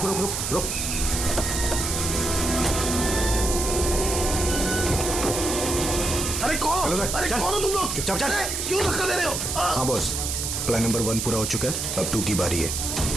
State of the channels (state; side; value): noise; right; hiss, 2 dB below the sound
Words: रुक रुक रुक। अरे कौन? हेलो सर, अरे चल। कौन हो तुम लोग? चुपचाप चल। अरे, क्यों धक्का दे रहे हो? हाँ बॉस, प्लान नंबर 1 पूरा हो चुका है, अब 2 की बारी है।